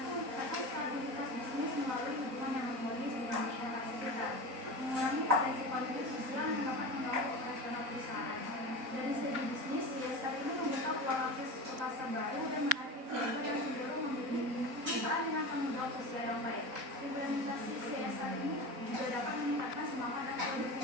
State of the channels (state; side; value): late; left; 4.1 ms